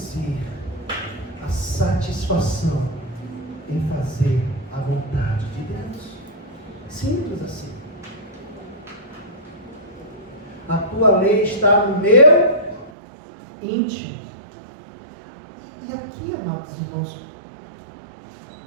à satisfação em fazer a vontade de Deus. Simples assim. A tua lei está no meu íntimo. E aqui, amados irmãos,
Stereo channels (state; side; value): drops out; left; at 12.9 s